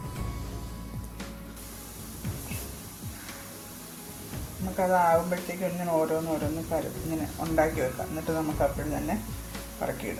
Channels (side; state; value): both; identical; correlation 1.00